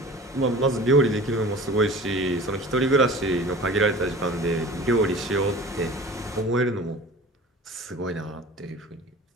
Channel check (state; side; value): normal; both; correlation 0.41